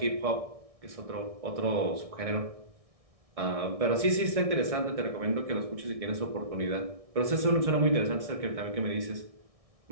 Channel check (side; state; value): left; late; 1.6 ms